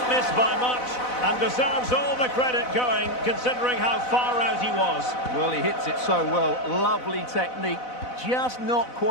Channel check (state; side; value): late; right; 4.0 ms